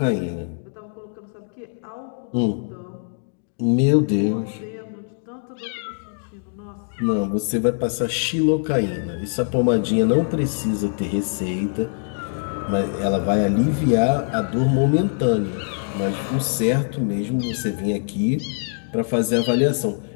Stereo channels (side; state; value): right; silent; 63 dB below the other